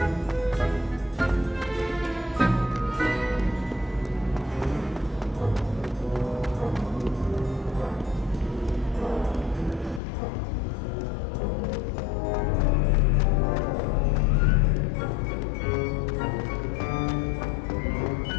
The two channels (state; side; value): drops out; right; at 10.0 s